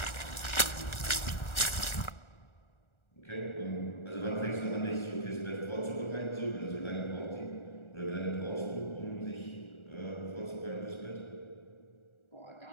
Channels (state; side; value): late; right; 1.4 ms